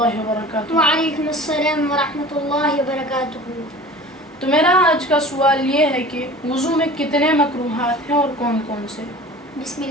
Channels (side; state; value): both; normal; correlation 0.40